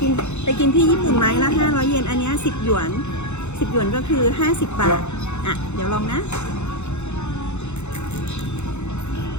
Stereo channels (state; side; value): late; right; 0.82 ms